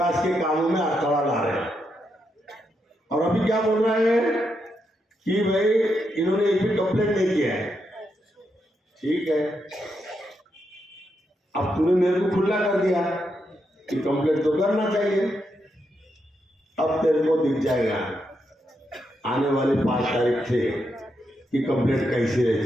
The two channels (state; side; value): normal; both; correlation 0.82